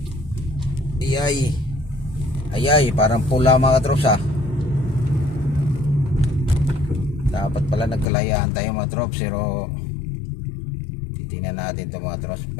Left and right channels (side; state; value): right; drops out; at 8.1 s